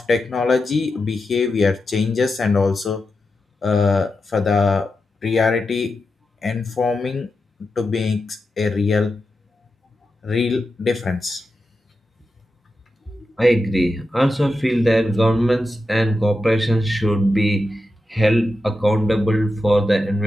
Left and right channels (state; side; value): normal; both; correlation 0.89